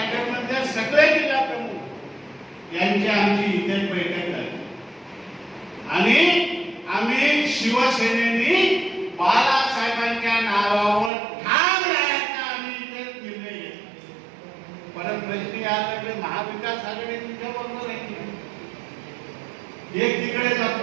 मध्ये सगळे जिल्हा प्रमुख यांची आमची इथे बैठक झाली. आणि आम्ही शिवसेनेने बाळासाहेबांच्या नावावर ठाम राहायचा आम्ही इथे निर्णय घेतला. परत प्रश्न याकडे महाविकास आघाडी तुमच्या बरोबर आहे, एक तिकडे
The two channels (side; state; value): left; drops out; at 11.1 s